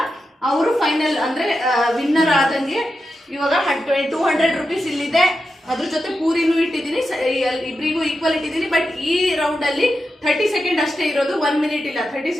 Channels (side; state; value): both; normal; correlation 0.89